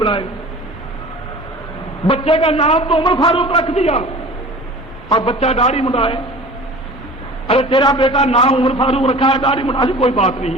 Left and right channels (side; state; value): both; normal; correlation 0.41